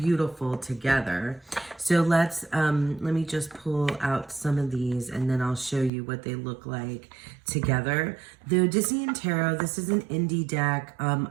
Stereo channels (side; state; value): left; drops out; at 5.9 s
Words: together. So let me just pull out some of these and then I'll show you what they look like together. The Odyssean Tarot, this is an indie deck.